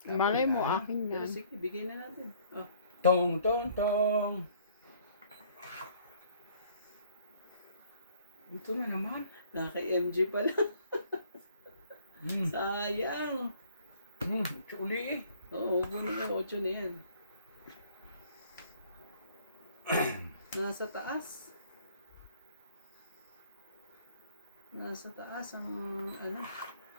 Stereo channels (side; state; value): both; inverted; correlation -0.59